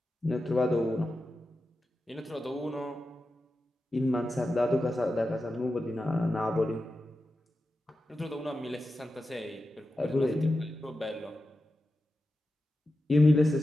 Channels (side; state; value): both; normal; correlation 0.91